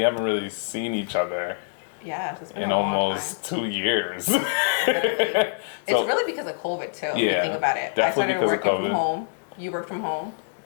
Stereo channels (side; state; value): right; silent; digital silence